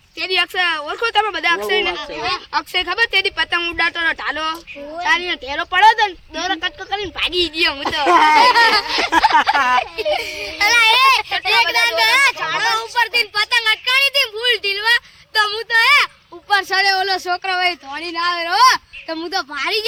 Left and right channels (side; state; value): both; identical; correlation 1.00